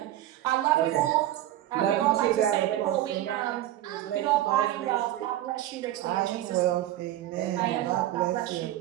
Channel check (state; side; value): quieter; left; 13.6 dB